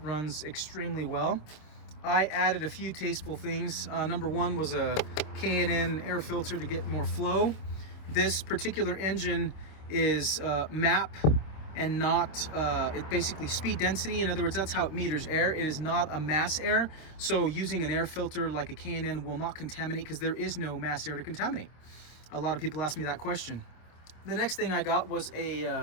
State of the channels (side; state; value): right; late; 26 ms